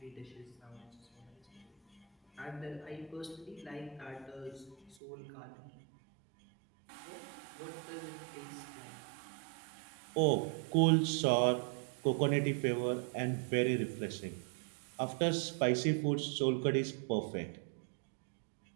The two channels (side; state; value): left; drops out; at 5.0 s